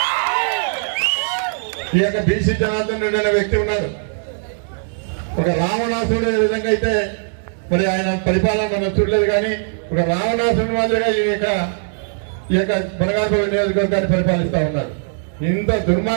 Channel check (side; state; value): left; silent; digital silence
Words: ఈ యొక్క బీసీ జనార్దన్ రెడ్డి అనే వ్యక్తి ఉన్నారు. ఒక రావణాసుడు ఏ విధంగా అయితే మరి ఆయన పరిపాలన మనం చూడలేదు, కానీ ఒక రావణాసుడి మాదిరిగా ఈ యొక్క బనగానపల్లి నియోజకవర్గాన్ని పరిపాలిస్తా ఉన్నారు. ఇంత